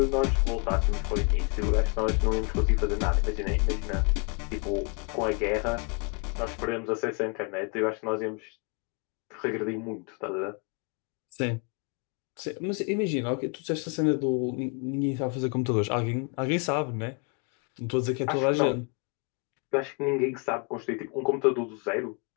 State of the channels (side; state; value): right; quieter; 35.1 dB